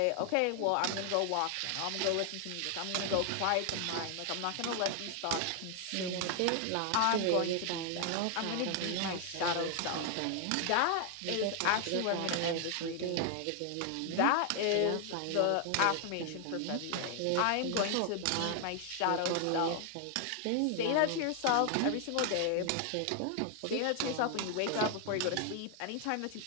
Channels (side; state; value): both; different; correlation 0.00